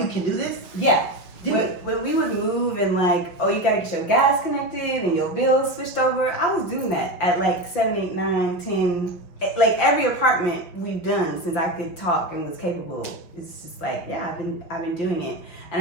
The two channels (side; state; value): right; late; 6.0 ms